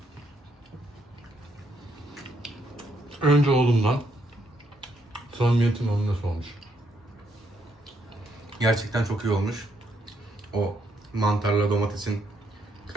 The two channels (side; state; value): both; normal; correlation 0.75